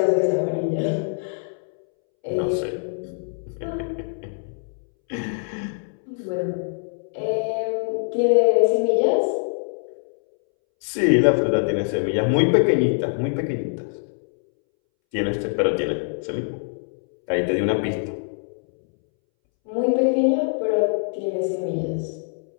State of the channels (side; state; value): right; silent; 63 dB below the other